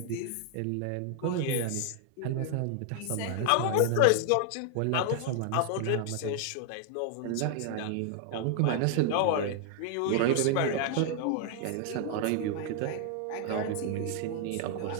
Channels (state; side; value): different; both; correlation 0.00